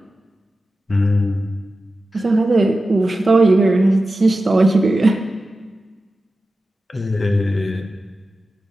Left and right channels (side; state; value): both; normal; correlation 0.93